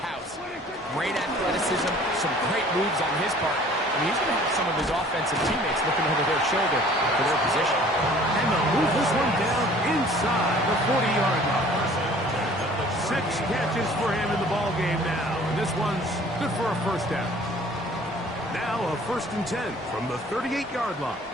Great athleticism, some great moves on his part. I mean, he's going to have some of his offensive teammates looking over their shoulder for their position. And they'll move this one down inside the 40-yard line. 6 catches for him in the ballgame now. And this one's good for a first down. Now a 1st and 10 from the 38-yard line.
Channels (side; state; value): both; normal; correlation 0.51